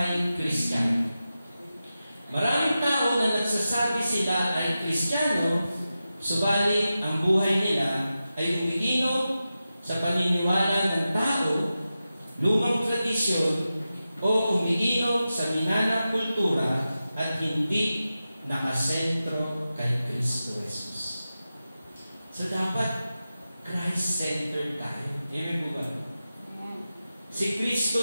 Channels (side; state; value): both; inverted; correlation -0.92